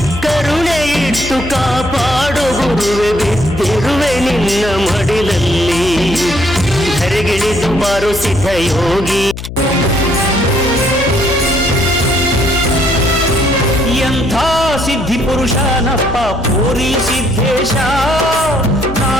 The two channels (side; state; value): left; noise; hum, 9 dB below the sound